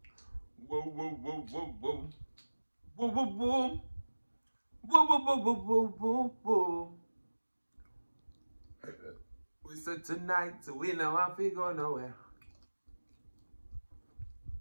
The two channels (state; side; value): inverted; both; correlation -1.00